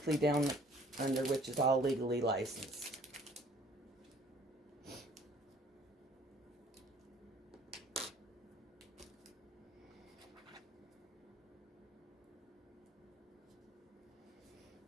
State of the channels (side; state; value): both; normal; correlation 0.56